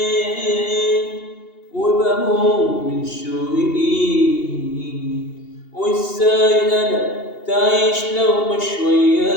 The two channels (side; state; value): right; late; 2.8 ms